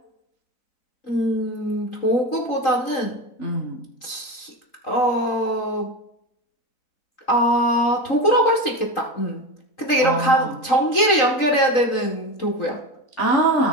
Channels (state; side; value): late; right; 3.8 ms